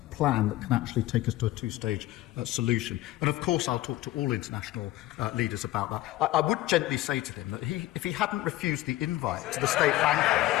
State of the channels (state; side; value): quieter; right; 16.2 dB